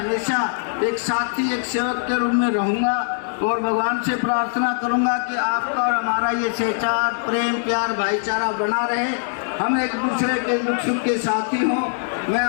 एक साथी, एक सेवक के रूप में रहूँगा। और भगवान से प्रार्थना करूँगा कि आपका और हमारा ये सहचार, प्रेम, प्यार, भाईचारा बना रहे, हम एक दूसरे के दुख सुख के साथी हों। मैं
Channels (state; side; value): silent; right; digital silence